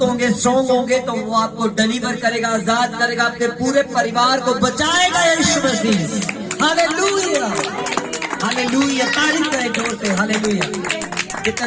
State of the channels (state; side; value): identical; both; correlation 1.00